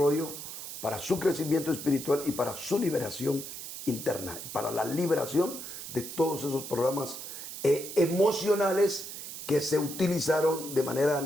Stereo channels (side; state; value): right; noise; hiss, 9 dB below the sound